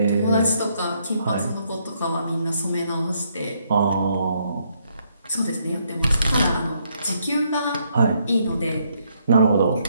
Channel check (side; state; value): both; inverted; correlation -0.73